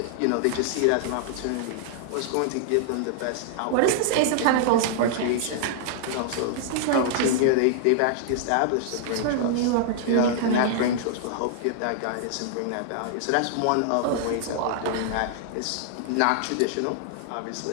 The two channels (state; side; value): different; both; correlation -0.01